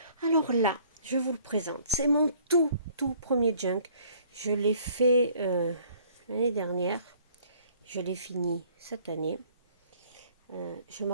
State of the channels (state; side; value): inverted; both; correlation -0.58